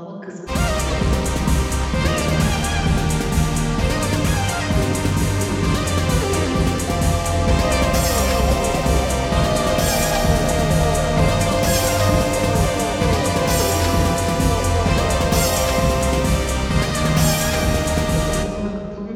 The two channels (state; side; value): identical; both; correlation 1.00